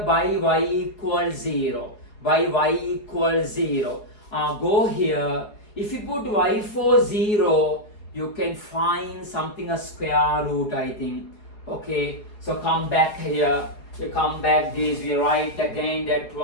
by y equals 0. By y equals 0. Go here. If you put y for 0, you can find something a square root, I think. Okay, so come back here. You come back this, we write again that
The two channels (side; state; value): right; late; 4.8 ms